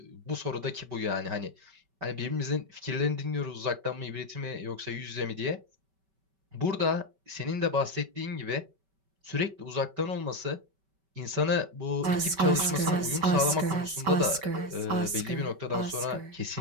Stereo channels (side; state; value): left; late; 5.2 ms